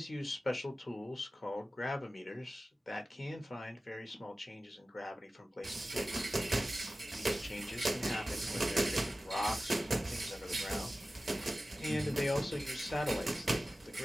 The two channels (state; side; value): normal; both; correlation 0.95